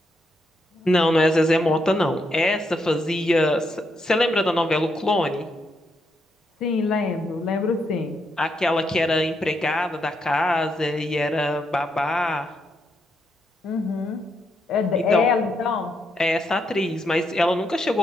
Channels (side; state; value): both; normal; correlation 0.79